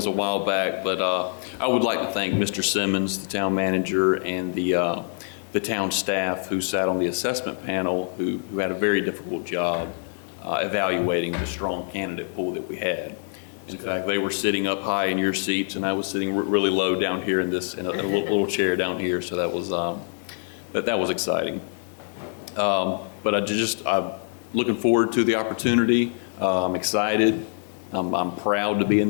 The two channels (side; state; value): right; silent; 62 dB below the other